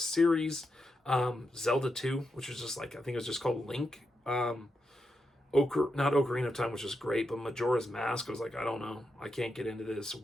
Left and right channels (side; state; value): both; normal; correlation 0.85